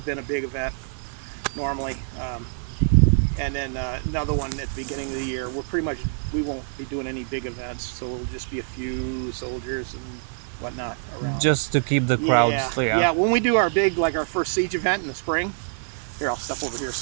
been a big event normally, and then another one at the beginning of the year. We won't be doing any big events, so it'll just be a few soldiers and whatnot around. Just to keep the crowds Yeah. When we do our big, like our first siege event in the spring, here I'll step over here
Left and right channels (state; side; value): silent; left; digital silence